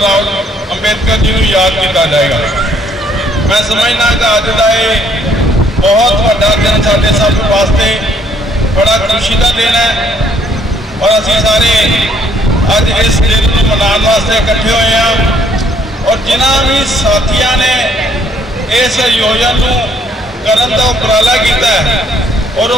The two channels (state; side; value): normal; both; correlation 0.66